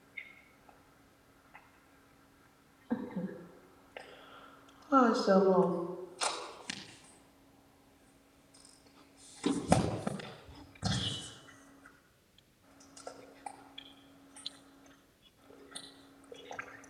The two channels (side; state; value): both; identical; correlation 1.00